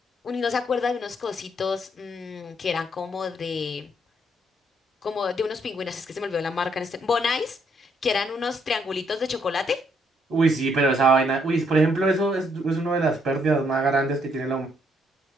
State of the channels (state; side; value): normal; both; correlation 0.71